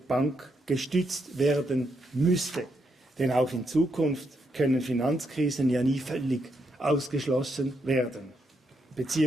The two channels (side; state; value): both; normal; correlation 0.79